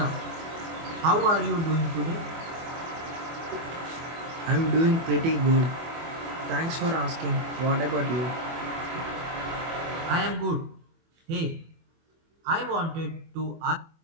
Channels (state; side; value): late; left; 24 ms